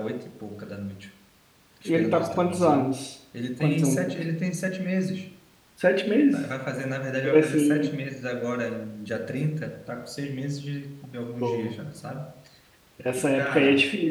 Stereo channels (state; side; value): identical; both; correlation 1.00